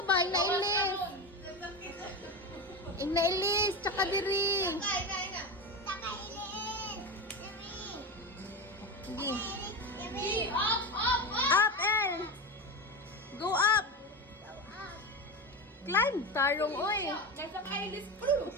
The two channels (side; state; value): both; normal; correlation 0.20